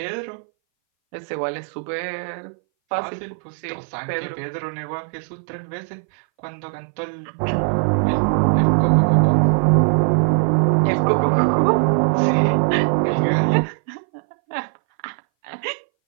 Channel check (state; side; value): silent; left; 61 dB below the other